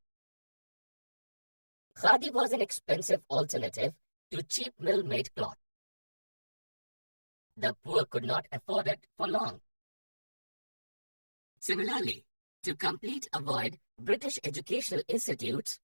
Khadi was an expensive alternative to cheap mill-made cloth. The poor could not afford it for long. Similarly, to complete a void British educational institutes,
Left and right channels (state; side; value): inverted; both; correlation -1.00